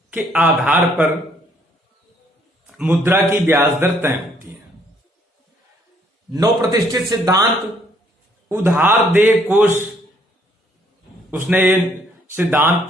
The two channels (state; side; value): normal; both; correlation 0.66